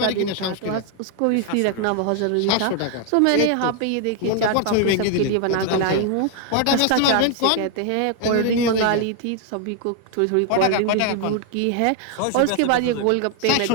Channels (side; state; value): both; different; correlation 0.00